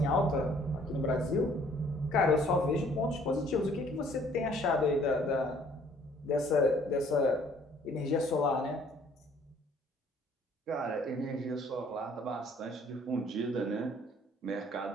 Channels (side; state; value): both; normal; correlation 0.59